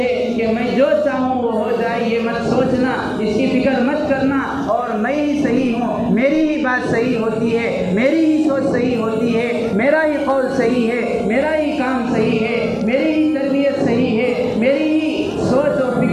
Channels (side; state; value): both; identical; correlation 1.00